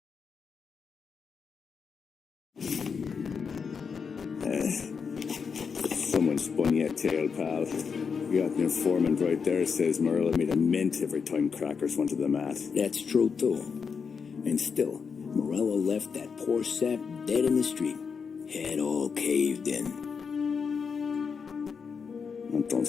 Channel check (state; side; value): quieter; right; 5.9 dB